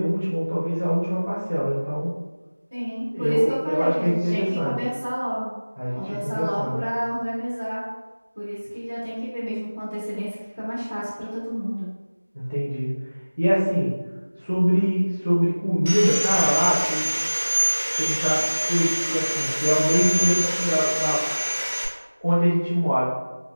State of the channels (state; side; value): inverted; both; correlation -1.00